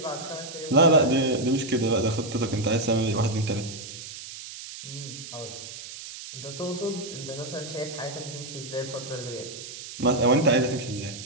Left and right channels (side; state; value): right; noise; hiss, 12 dB below the sound